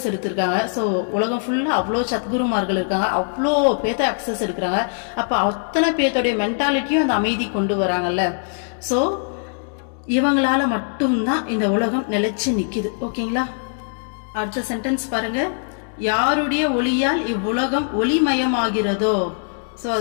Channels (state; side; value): silent; right; digital silence